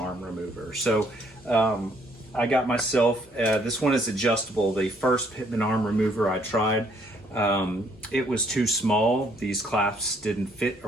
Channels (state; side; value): normal; both; correlation 0.66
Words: remover. So I got myself, this one is adjustable. The first pitman arm remover I tried, it was too small. These clasps didn't fit